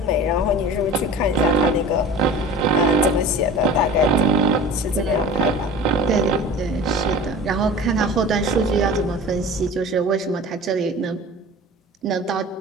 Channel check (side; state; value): both; normal; correlation 0.38